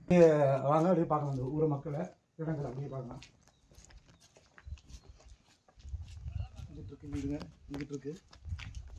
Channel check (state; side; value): identical; both; correlation 1.00